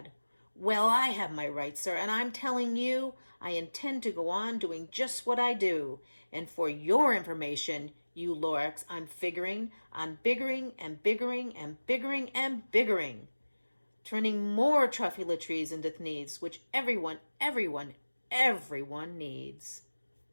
Well, I have my rights, sir, and I'm telling you, I intend to go on doing just what I do. And for your information, you Lorax, I'm figuring on biggering and biggering and biggering and biggering, turning more truffula trees into needs, which everyone needs."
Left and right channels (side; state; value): both; inverted; correlation -1.00